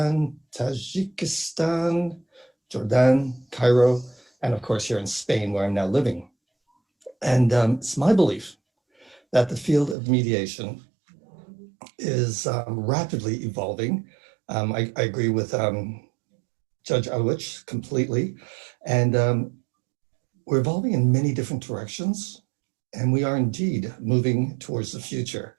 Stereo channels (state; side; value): drops out; left; at 10.0 s